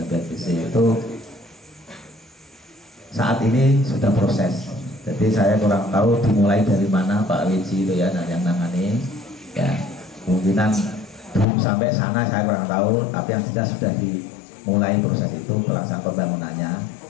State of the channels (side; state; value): right; drops out; at 11.5 s